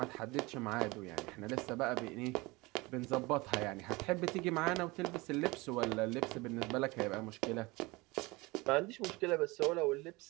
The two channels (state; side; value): quieter; left; 23.4 dB